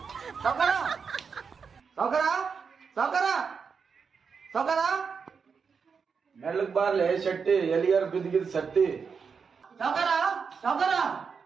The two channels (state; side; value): quieter; left; 5.8 dB